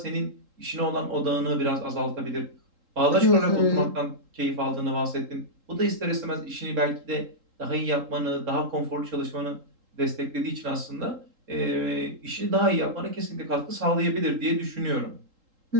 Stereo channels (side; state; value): left; late; 3.8 ms